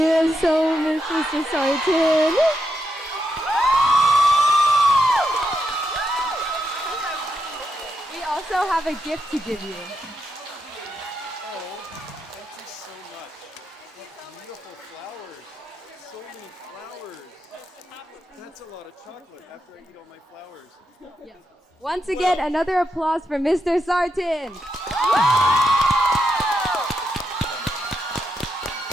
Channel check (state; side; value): normal; both; correlation 0.83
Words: so much, Mr. Sarton. We also have a gift to give you. Thank you so much. What beautiful flowers. So many flowers. That's a lot of chocolate after I eat all my flowers. Once again, another applause for Mr. Sarton.